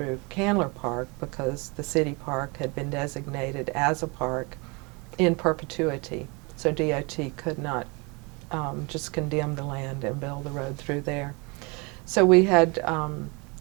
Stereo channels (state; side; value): quieter; left; 29.3 dB